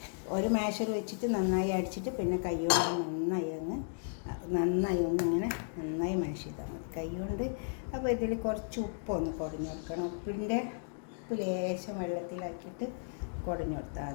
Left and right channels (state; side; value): silent; right; digital silence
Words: ഒരു മാഷർ വെച്ചിട്ട് നന്നായി അടിച്ചിട്ട് പിന്നെ കൈ കൊണ്ട് നന്നായി ഒന്നിങ്ങനെ നന്നായി മാഷ് ചെയ്താൽ മതി കൈ കൊണ്ട്. അപ്പോൾ ഇതിൽ കുറച്ച് ഉപ്പൊന്ന് കുടഞ്ഞു കൊടുക്കണം. ഉപ്പ് ലേശം വെള്ളത്തിലാക്കിയിട്ട് കുടഞ്ഞു കൊടുത്താൽ